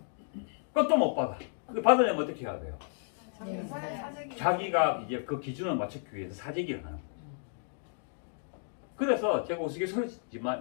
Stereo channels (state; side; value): silent; right; digital silence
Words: 그것도 못 받아. 받으려면 어떻게 해야 돼요? 자기가 이제 그 기준을 맞추기 위해서 사재기를 하는 거죠. 그래서 제가